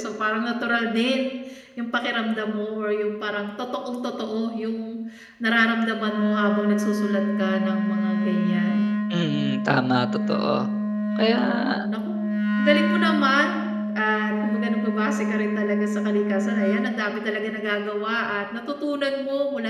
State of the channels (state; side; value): identical; both; correlation 1.00